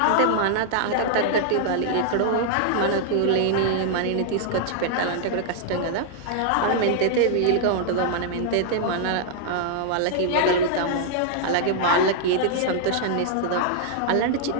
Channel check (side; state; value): both; different; correlation -0.01